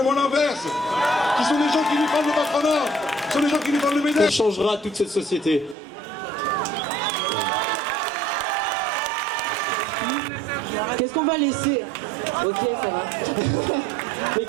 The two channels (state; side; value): drops out; left; at 5.8 s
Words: l'inverse, qui sont des gens qui nous parlent de patronat, qui sont des gens qui nous parlent de ménage. On changera toute cette société. Qu'est-ce qu'on va laisser? Ok, ça va. Mais